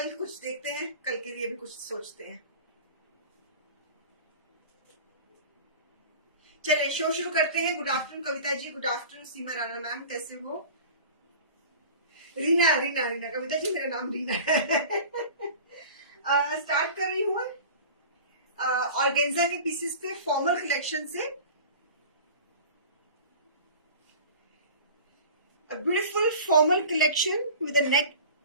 कुछ देखते हैं, कल के लिए भी कुछ सोचते हैं। चलिए शो शुरू करते हैं। Good afternoon Kavita ji, good afternoon सीमा राणा मैम, कैसे हो? रीना रीना रीना, कविता जी मेरा नाम रीना है। स्टार्ट कर रही हूँ ऑर्गेन्जा के पीसेस पे, फॉर्मल कलेक्शन से। Beautiful formal collection with a neck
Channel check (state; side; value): inverted; both; correlation -0.38